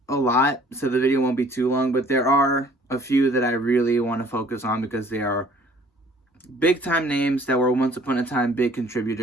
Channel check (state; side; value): normal; both; correlation 0.54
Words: a lot, so the video won't be too long, but there are a few that I really want to focus on because they are big-time names that were once upon a time big